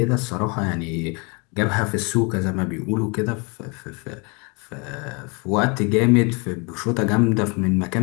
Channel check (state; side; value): quieter; right; 31.3 dB